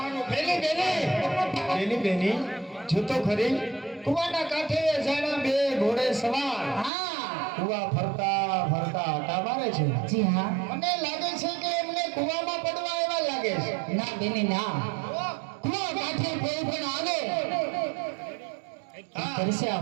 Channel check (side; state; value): left; drops out; at 6.9 s